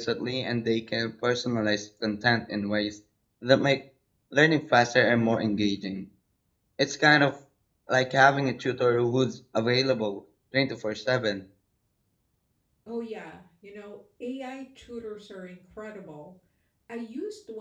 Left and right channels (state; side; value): identical; both; correlation 1.00